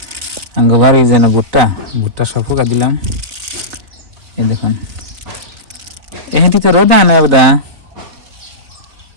আঙ্গবার এই যেন ভুট্টা ভুট্টা সব ফুকা দিলাম। এই দেখুন, এহেঁটিতে রোদ আনা বোধা।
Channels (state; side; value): late; left; 4.0 ms